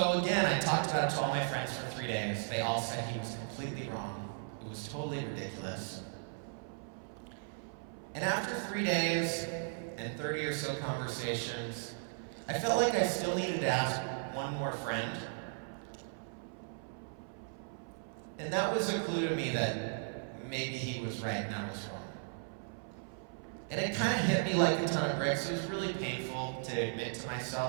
again, I talked about it to all my friends for 3 days. They all said he was completely wrong. It was totally ridiculous. And after 3 days and 30 or so conversations, I felt like I still needed to ask one more friend. And that was a clue to me that maybe he was right and I was wrong. And it kind of hit me like a ton of bricks. It was really painful to admit to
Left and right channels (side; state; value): left; silent; 54 dB below the other